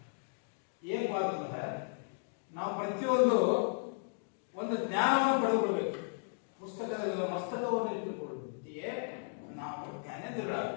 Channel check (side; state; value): right; silent; digital silence